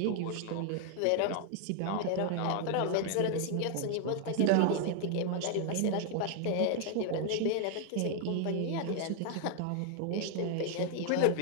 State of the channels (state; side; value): different; both; correlation 0.00